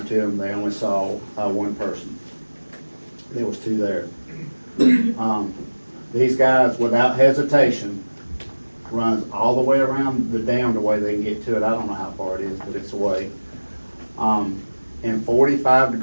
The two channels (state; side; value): inverted; both; correlation -1.00